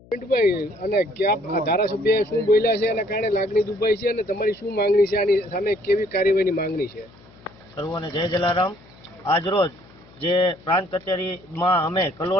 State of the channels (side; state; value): left; noise; hum, 25 dB below the sound